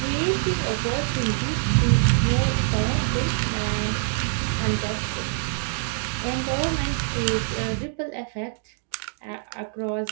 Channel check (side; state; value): left; silent; 62 dB below the other